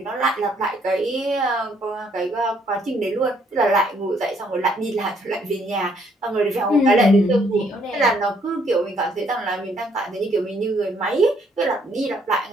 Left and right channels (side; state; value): both; normal; correlation 0.68